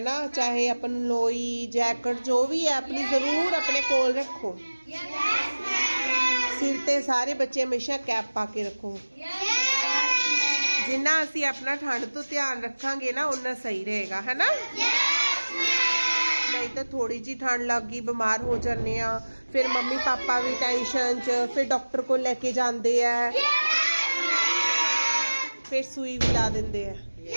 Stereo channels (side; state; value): both; inverted; correlation -1.00